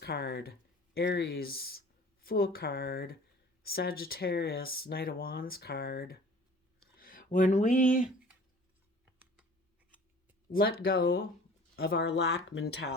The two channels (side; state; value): both; normal; correlation 0.47